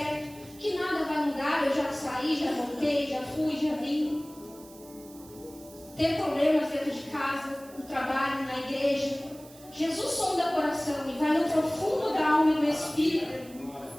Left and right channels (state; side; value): noise; right; hiss, 22 dB below the sound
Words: que nada vai mudar, eu já saí, já voltei, já fui, já vim. Ter problemas dentro de casa, no trabalho, na igreja. Jesus sonda o coração e vai no profundo da alma e do espírito